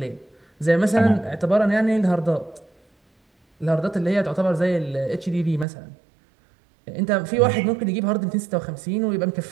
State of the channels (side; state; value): left; drops out; at 5.7 s